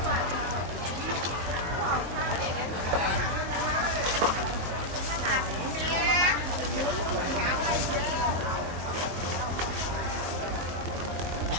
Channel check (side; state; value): left; late; 22 ms